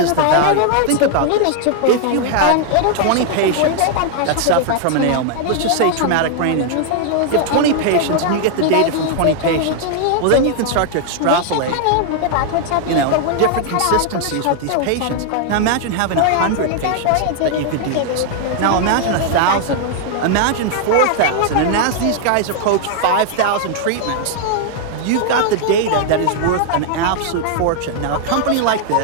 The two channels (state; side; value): different; both; correlation 0.00